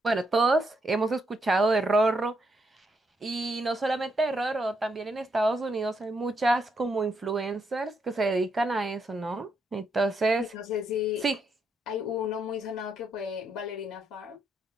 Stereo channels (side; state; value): both; normal; correlation 0.78